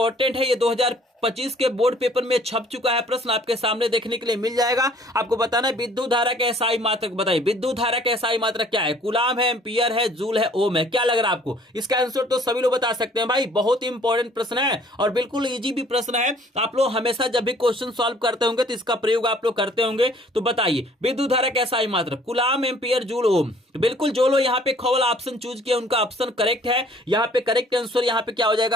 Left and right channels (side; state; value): both; normal; correlation 0.57